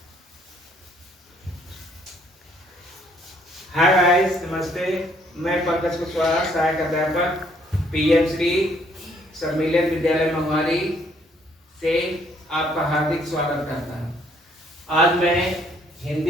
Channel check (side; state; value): both; normal; correlation 0.65